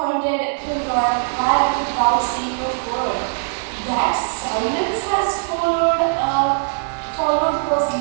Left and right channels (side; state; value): left; silent; 66 dB below the other